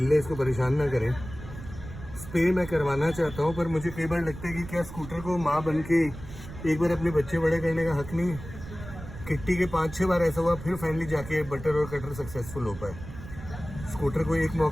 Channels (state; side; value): noise; right; rumble, 12 dB below the sound